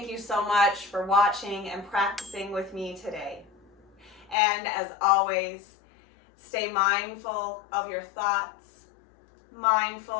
you so much for watching and practicing with me today. And as always, stay mindful of your thoughts,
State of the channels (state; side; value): drops out; right; at 4.4 s